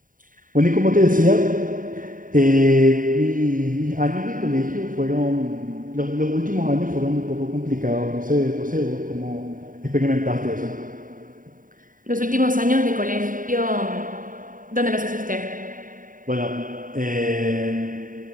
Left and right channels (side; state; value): left; late; 0.39 ms